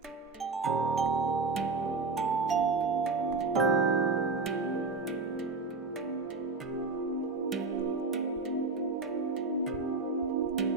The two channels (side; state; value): left; quieter; 4.0 dB